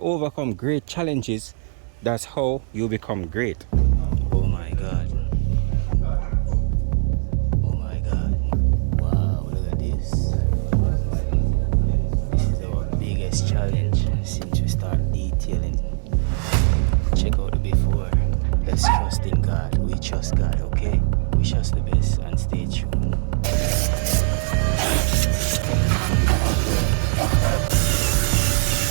great challenges, that's how you become great. Oh my God. Oh my God. Wow, look at this. This is our biggest challenge since we start detailing. Check out the before. Let's trust in God. We trust God, okay? Wish us the best and stay tuned.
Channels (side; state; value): left; silent; digital silence